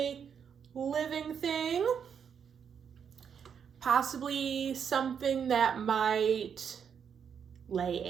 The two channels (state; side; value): quieter; left; 7.4 dB